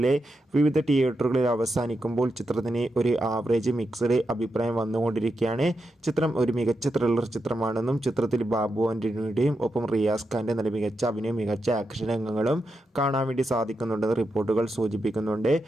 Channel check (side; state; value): both; normal; correlation 0.87